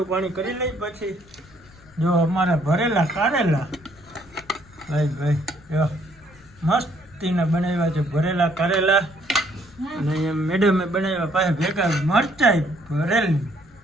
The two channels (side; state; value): left; noise; rumble, 25 dB below the sound